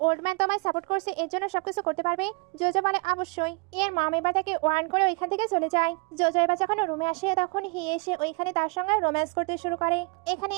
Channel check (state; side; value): quieter; left; 31.5 dB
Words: ওল্ড ম্যান তোমায় সাপোর্ট করছে এর জন্য সবকিছু করতে পারবে? জোজো বলে অবশ্যই। এর মম এবার তাকে ওয়ার্ন করে ওইখান থেকে চলে যায়। জোজো এবার যখন রুমে আসে তখন এসে ওইখানে তার সঙ্গে রোম্যান্স করতে শুরু করে। এখানে